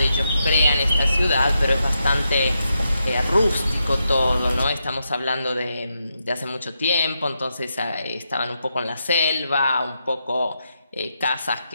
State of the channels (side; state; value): both; inverted; correlation -0.84